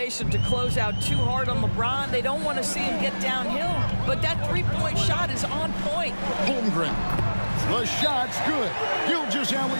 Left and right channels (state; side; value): inverted; both; correlation -1.00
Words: to close out too hard on LeBron. They don't want to see him get downhill, but that three-point shot is on point. Holmgren. The shot's good.